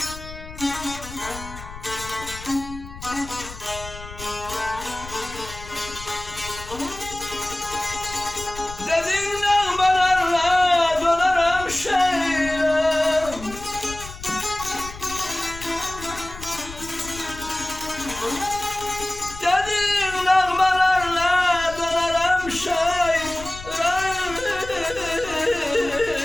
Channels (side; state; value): left; noise; rumble, 14 dB below the sound